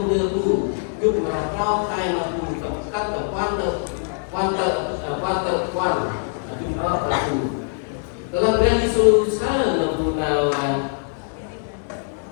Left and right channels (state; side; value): silent; right; digital silence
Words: dulu, cuk berapa kai mampu tekan tekan cuk aku. Dalam berani susah mampu nawan.